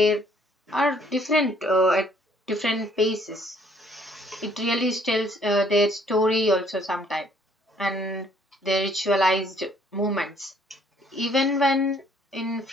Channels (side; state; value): both; normal; correlation 0.63